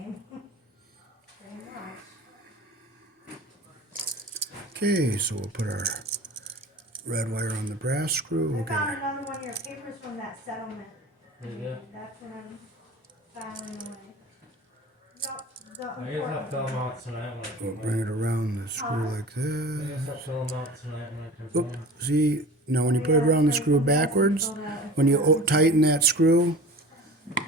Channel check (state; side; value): normal; both; correlation 0.38